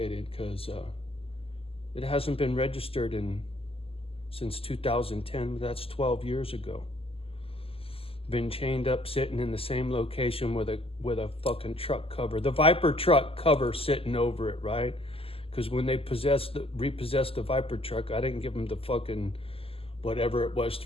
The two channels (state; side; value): late; right; 0.27 ms